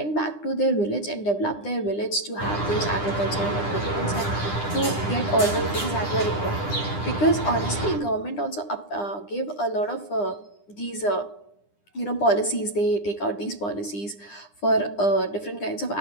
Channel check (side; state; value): right; late; 9.9 ms